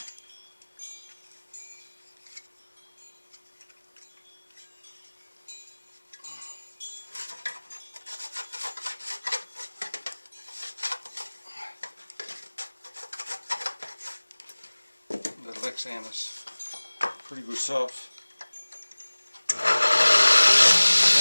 The Lexan is pretty good stuff.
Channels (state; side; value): inverted; both; correlation -1.00